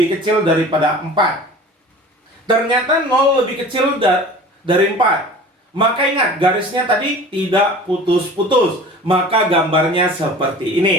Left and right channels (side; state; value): both; normal; correlation 0.41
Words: kecil daripada 4? Ternyata 0 lebih kecil dari 4. Maka ingat, garisnya tadi tidak putus-putus. Maka gambarnya seperti